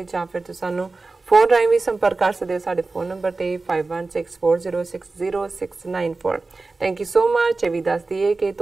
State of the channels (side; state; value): left; quieter; 3.6 dB